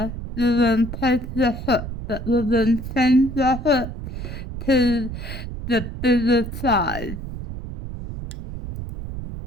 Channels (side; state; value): right; noise; rumble, 8 dB below the sound